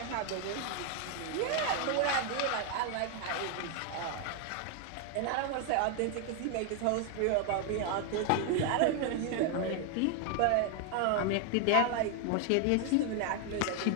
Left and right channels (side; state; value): both; different; correlation 0.01